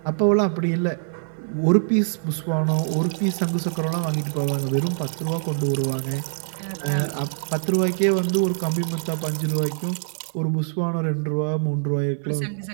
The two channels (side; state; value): left; silent; 63 dB below the other